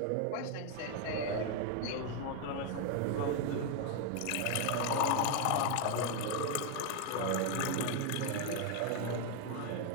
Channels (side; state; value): both; different; correlation 0.01